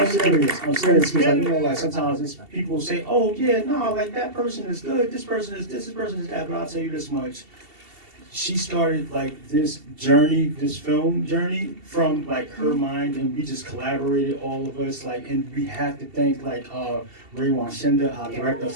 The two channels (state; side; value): late; left; 2.7 ms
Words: serious because sometimes people say, oh yeah, no, that person is good, this person is this person is that, but I'll tell you this much. She started this journey, this film journey from her mind, and we just collaborated, all of us, and we have to thank Ray Wanshinda, our director of